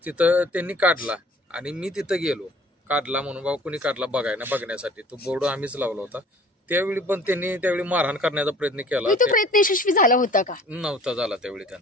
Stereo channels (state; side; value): normal; both; correlation 0.50